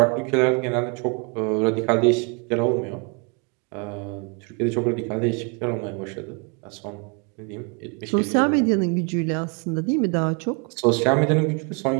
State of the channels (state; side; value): quieter; left; 34.2 dB